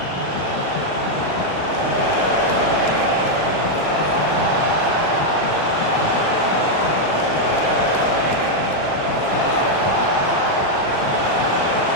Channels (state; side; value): late; right; 36 ms